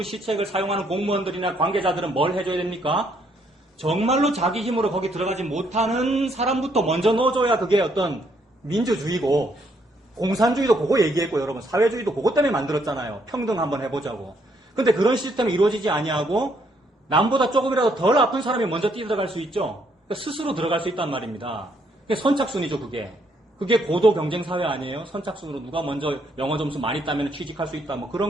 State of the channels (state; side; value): normal; both; correlation 0.71